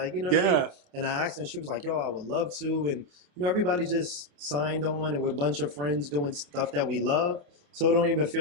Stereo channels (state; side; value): late; left; 28 ms